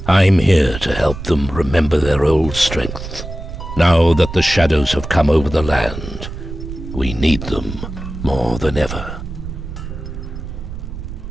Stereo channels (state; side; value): noise; right; rumble, 9 dB below the sound